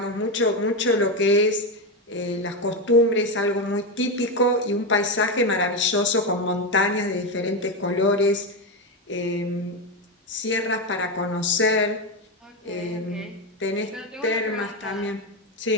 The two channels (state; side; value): normal; both; correlation 0.11